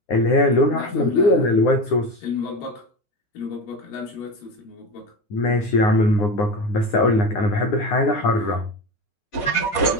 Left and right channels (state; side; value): late; right; 9.8 ms